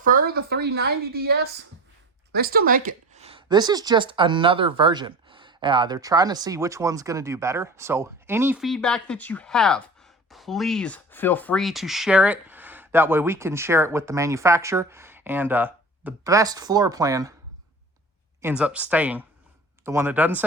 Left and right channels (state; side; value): normal; both; correlation 0.36